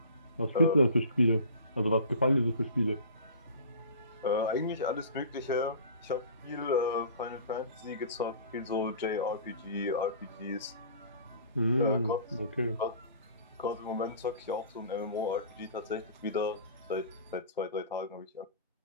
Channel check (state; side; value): inverted; both; correlation -0.41